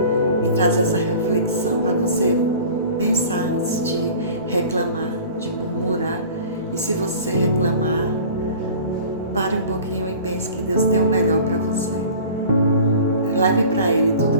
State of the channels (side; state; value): both; inverted; correlation -0.42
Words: E traz essa reflexão para você pensar antes de reclamar, de murmurar. E se você reclamar, pare um pouquinho e pense que Deus tem o melhor para você. Leve para Ele tudo